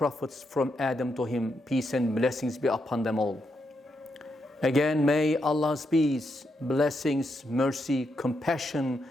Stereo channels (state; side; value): normal; both; correlation 0.82